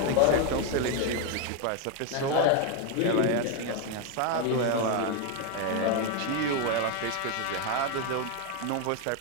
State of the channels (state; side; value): different; both; correlation 0.02